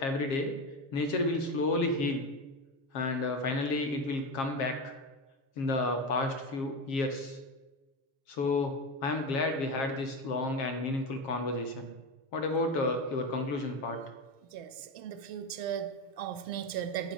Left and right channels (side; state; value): right; late; 6.1 ms